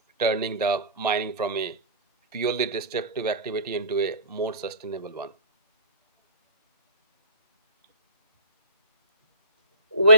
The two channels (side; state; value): both; inverted; correlation -0.35